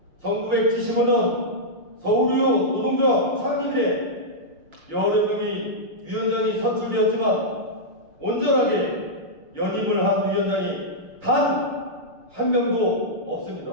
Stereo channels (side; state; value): left; late; 6.6 ms